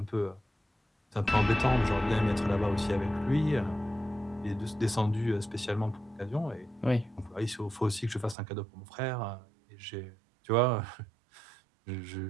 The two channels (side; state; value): left; drops out; at 8.3 s